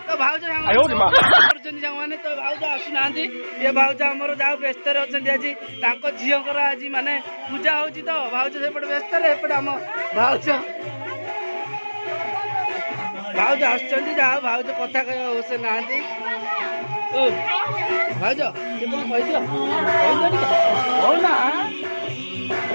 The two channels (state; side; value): inverted; both; correlation -1.00